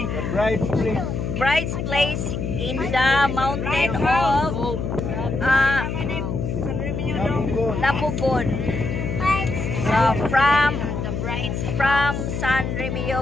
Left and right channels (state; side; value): noise; left; hum, 3 dB below the sound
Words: bride's place. Bride's place in the mountain of Lapugon. So from San